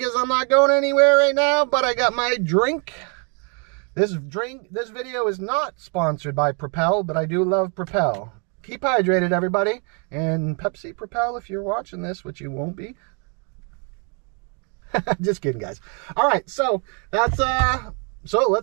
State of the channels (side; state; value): left; quieter; 37.9 dB